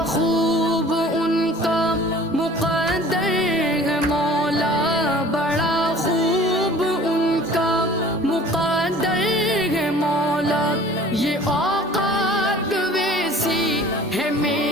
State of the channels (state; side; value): normal; both; correlation 0.47